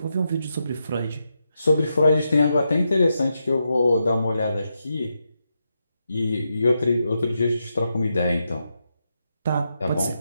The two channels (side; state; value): both; inverted; correlation -0.85